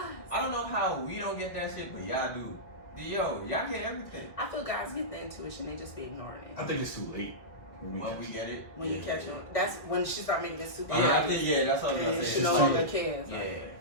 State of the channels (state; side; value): late; right; 1.8 ms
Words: I don't know how we don't get that shit, but y'all do. Yo, y'all get everything. I feel guys get the intuition, they just be ignoring it. I think it's too late. When we get it. When you catch on. That's when she start making it super I think, that's what I was going to say. She no longer cares. Yeah.